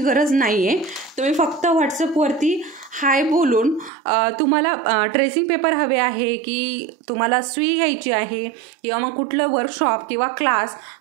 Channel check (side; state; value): left; drops out; at 3.9 s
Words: नाही आहे. तुम्ही फक्त व्हॉट्सअपवरती हाय बोलून तुम्हाला ट्रेसिंग पेपर हवे आहे की तुम्हाला सुई घ्यायची आहे किंवा मग कुठलं वर्कशॉप किंवा क्लास